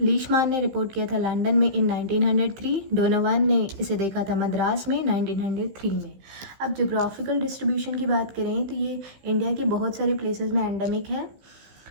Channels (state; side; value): late; left; 15 ms